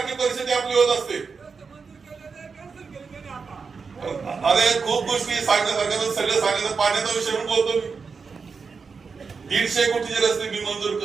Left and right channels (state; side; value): quieter; left; 5.2 dB